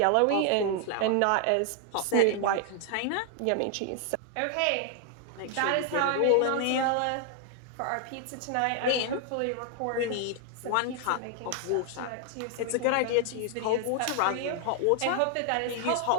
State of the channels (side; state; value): both; different; correlation 0.00